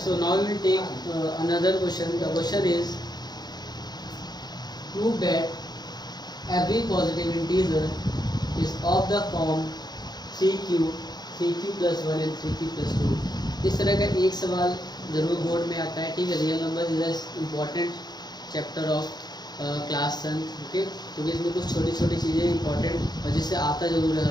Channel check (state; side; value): late; right; 0.20 ms